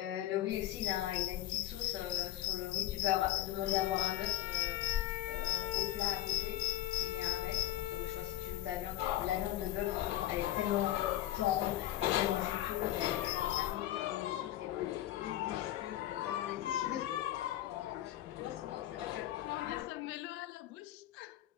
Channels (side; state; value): right; quieter; 13.9 dB